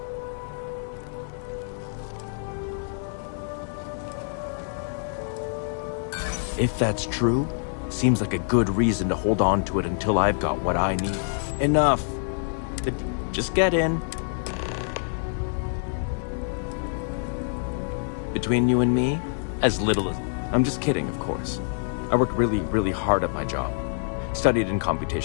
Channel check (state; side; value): silent; right; digital silence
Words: If that's true, seems like a good reason to hold on to it until I've got what I need. Enough. Just get in. Between you and me, as little as... I'm just kidding, of course. I work really, really hard at my job. Studied in